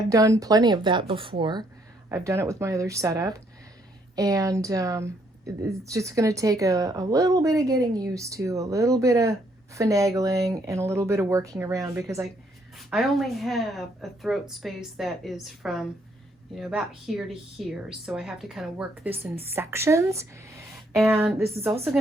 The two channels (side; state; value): both; normal; correlation 0.70